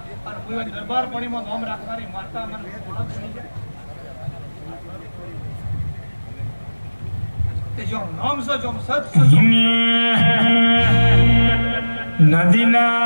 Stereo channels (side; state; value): both; inverted; correlation -1.00